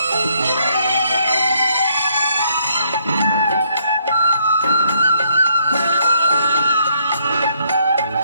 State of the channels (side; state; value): both; inverted; correlation -0.71